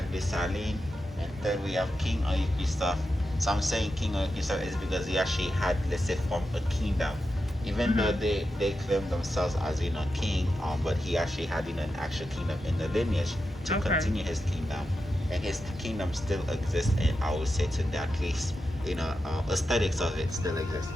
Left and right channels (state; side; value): normal; both; correlation 0.89